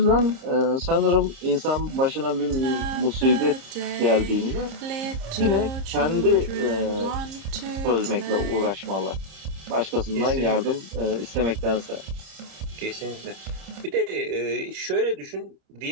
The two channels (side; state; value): left; late; 30 ms